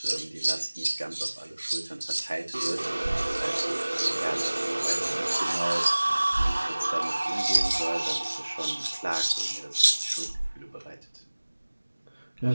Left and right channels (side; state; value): both; inverted; correlation -1.00